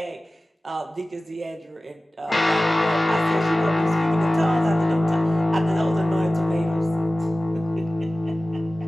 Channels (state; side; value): normal; both; correlation 0.97